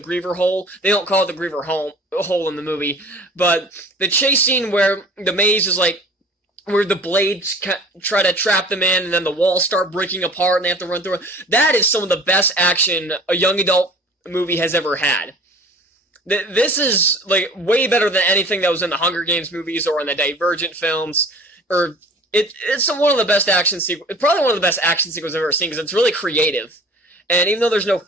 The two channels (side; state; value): both; normal; correlation 0.46